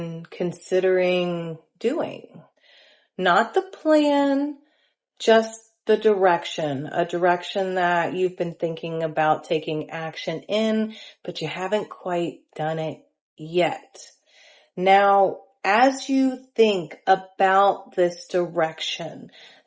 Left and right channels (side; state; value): both; identical; correlation 1.00